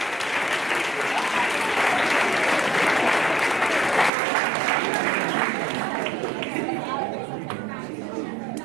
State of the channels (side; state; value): left; drops out; at 4.1 s